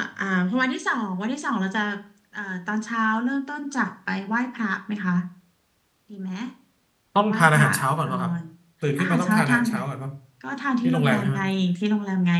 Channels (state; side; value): identical; both; correlation 1.00